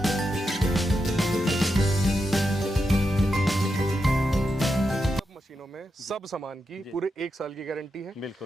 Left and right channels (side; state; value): both; normal; correlation 0.86